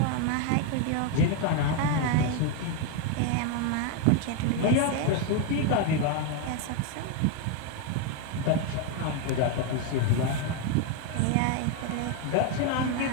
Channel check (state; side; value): different; both; correlation 0.01